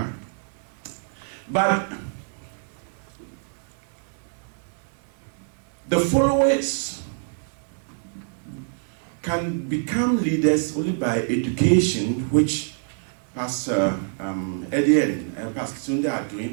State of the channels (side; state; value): left; silent; 60 dB below the other